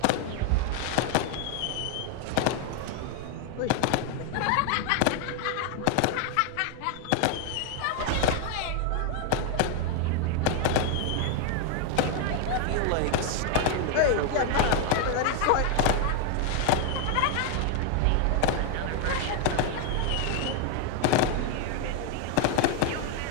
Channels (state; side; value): different; both; correlation 0.00